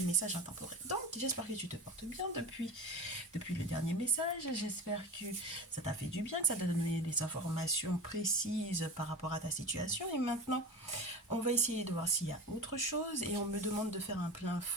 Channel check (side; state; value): both; normal; correlation 0.29